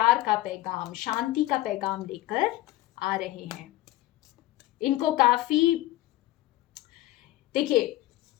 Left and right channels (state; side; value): quieter; right; 16.6 dB